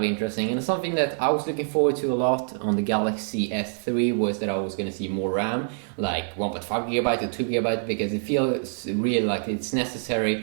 interesting, and something that I was looking forward to a lot on the Galaxy S3 was that I was going to see more RAM, like 1.5 gigabyte or 2 gigabyte, because it feels really like it's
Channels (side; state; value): left; silent; digital silence